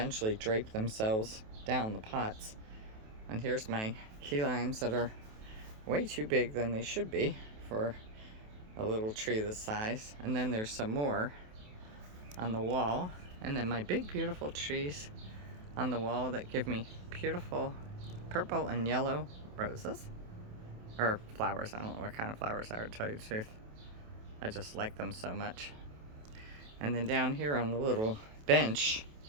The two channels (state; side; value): late; left; 28 ms